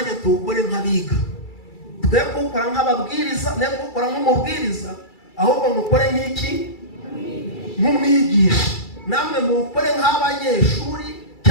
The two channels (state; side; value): late; right; 2.3 ms